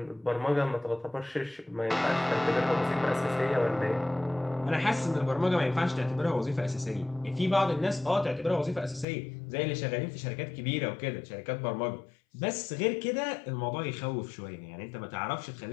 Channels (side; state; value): right; drops out; at 9.1 s